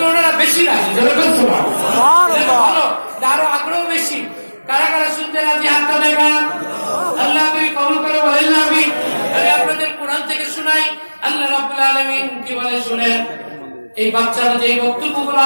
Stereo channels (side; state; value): both; inverted; correlation -1.00